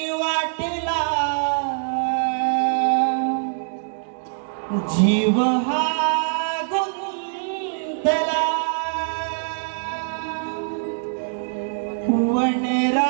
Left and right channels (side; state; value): left; silent; digital silence